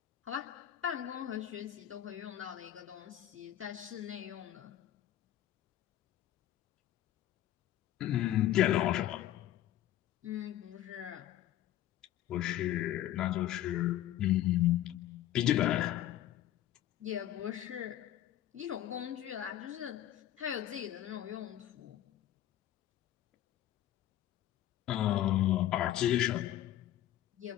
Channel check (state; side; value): quieter; right; 12.8 dB